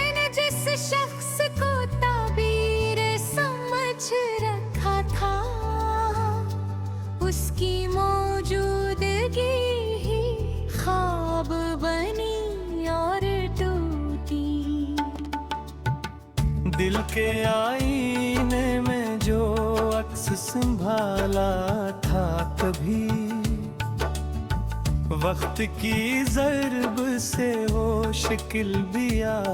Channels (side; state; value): both; identical; correlation 1.00